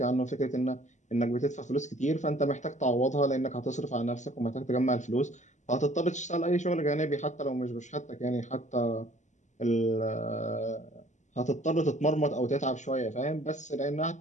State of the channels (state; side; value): late; right; 0.34 ms